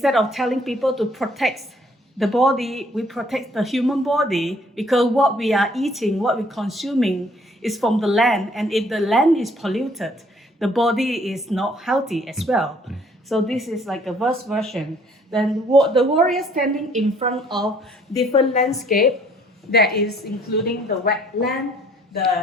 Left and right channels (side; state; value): both; normal; correlation 0.60